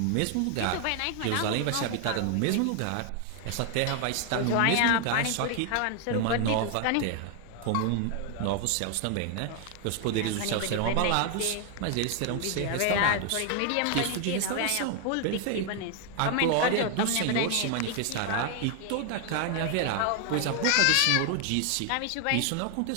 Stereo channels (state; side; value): different; both; correlation 0.00